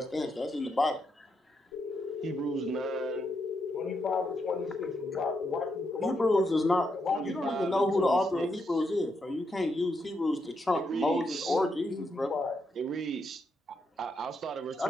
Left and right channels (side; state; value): both; normal; correlation 0.81